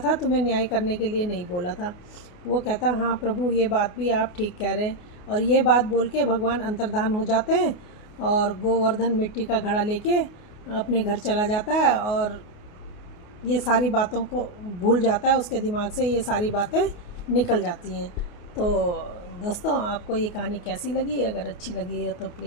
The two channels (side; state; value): right; late; 28 ms